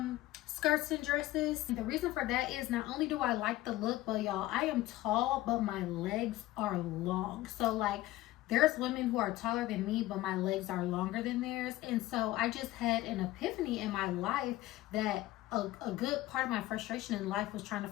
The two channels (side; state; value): right; quieter; 16.3 dB